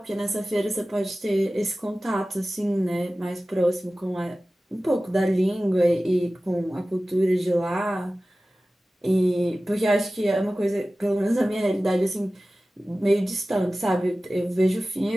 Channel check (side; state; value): both; normal; correlation 0.96